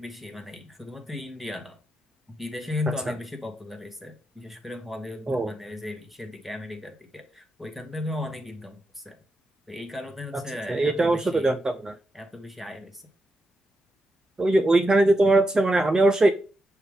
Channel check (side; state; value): both; normal; correlation 0.86